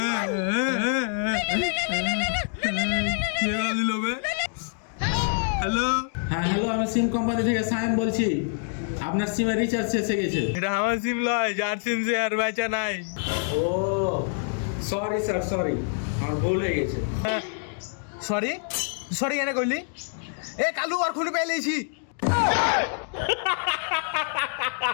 হ্যালো, হ্যাঁ হ্যালো, আমি সিম কোম্পানি থেকে সায়েম বলছি। আপনার সিমে রিচার্জ শেষ হয়ে গেছে। এটা আমার সিম লয়, যার সিম সে আর বেচা নাই। ও সরি স্যার, সরি, আমার ভুল হয়ে গেছে। সরি সরি কেন কইলি? এ কালু আর খুলে পেলেছি।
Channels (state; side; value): silent; right; digital silence